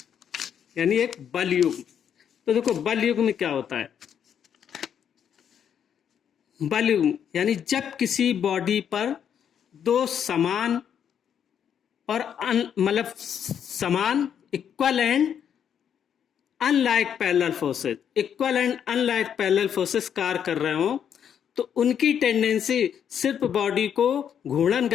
यानी एक बल युग्म। तो देखो बल युग्म में क्या होता है, बल युग्म यानी जब किसी बॉडी पर दो समान और मतलब समान equal and unlike parallel forces कार्य कर रहे हो तो उनकी टेंडेंसी सिर्फ बॉडी को घूर्णन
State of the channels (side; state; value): right; quieter; 8.5 dB